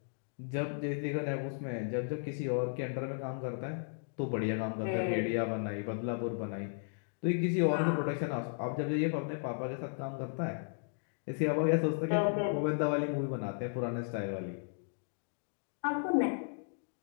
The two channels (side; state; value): right; silent; digital silence